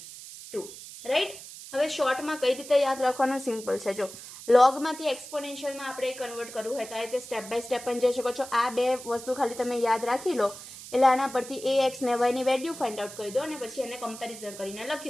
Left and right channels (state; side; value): noise; right; hiss, 14 dB below the sound